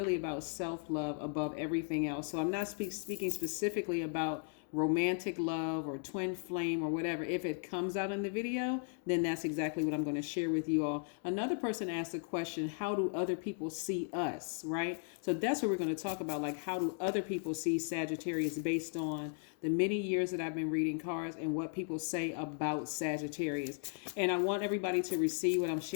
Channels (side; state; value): right; silent; 54 dB below the other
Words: about self-love above everything else. So I'm not speaking specifically about romantic love or twin flame or whatever. If it comes out in the video, then that's exactly what I'm going to share with you all. Another person asked the question, how do other people see us, right? So that's what we're going to talk about, like how do other people see Sagittarius based on the many years that I've been reading cards and what people say about Sagittarius. And I want everybody to receive what I'm